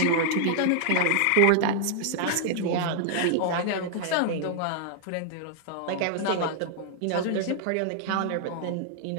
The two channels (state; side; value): different; both; correlation 0.00